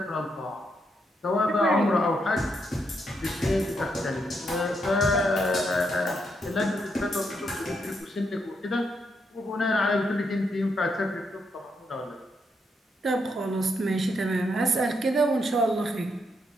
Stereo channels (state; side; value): normal; both; correlation 0.78